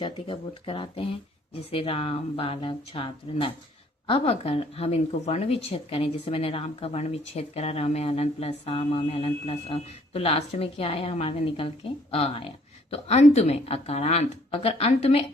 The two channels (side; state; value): both; normal; correlation 0.61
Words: का बोध कराते हैं, जैसे राम, बालक, छात्र, नर। अब अगर हम इनको वर्ण विच्छेद करें, जैसे मैंने राम का वर्ण विच्छेद करा, र में अलंत प्लस आ, म में अलंत प्लस अ, तो लास्ट में क्या आया हमारे निकल के? अ आया। तो अंत में अकारांत, अगर अंत में